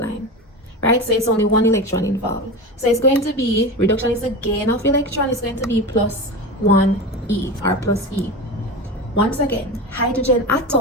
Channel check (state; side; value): normal; both; correlation 0.25